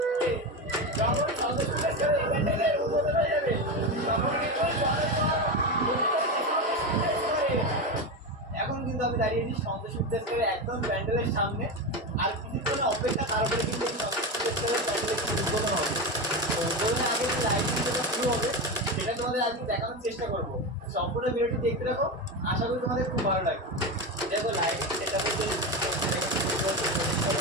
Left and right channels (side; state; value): both; normal; correlation 0.17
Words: এখন কিন্তু আমি দাঁড়িয়েছি সন্তোষ বিদ্যাসাগরের একদম প্যান্ডেলের সামনে। আর কিছুক্ষণ অপেক্ষা, তারপরে কিন্তু এই সন্তোষ বিদ্যাসাগরের প্যান্ডেলের উদ্বোধন হবে। তো উদ্বোধনের আগে যে লাইটিং যেটা শুরু হবে সেটা তোমাদের আজকে দেখানোর চেষ্টা করবো। সম্পূর্ণ ভিডিওটি দেখতে থাকো, আশা করি তোমাদের খুব ভালো লাগবে। দেখো লাইটিং সেটা বলতে